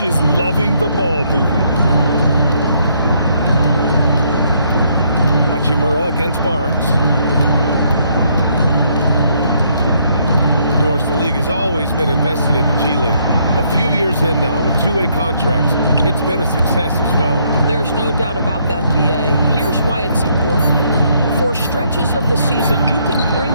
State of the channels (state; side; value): inverted; both; correlation -0.70